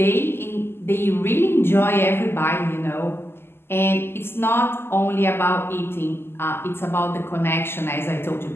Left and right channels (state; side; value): late; right; 0.12 ms